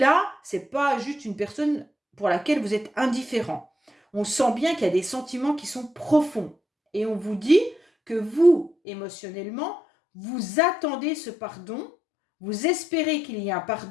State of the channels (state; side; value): drops out; right; at 8.7 s